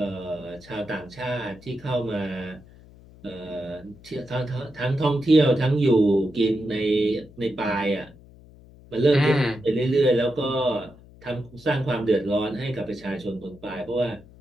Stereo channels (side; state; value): left; noise; hum, 23 dB below the sound